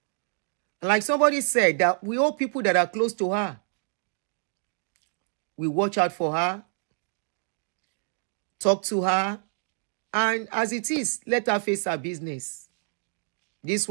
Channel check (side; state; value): left; silent; 60 dB below the other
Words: And like somebody said, that we all people that are close to her. We watch out for her. Talk to her. And as it is, let her face her business. This